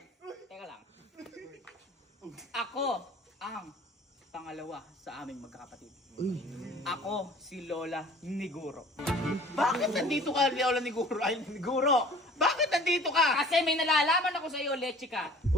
Teka lang. Ako ang pangalawa sa aming magkakapatid. Uy. Ako si Lola Niguro. Bakit nandito ka, Lola ni Guro? Ay, ni Guro! Bakit nandito ka? Kasi may nalalaman ako sa iyo, Lechika.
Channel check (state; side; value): normal; both; correlation 0.48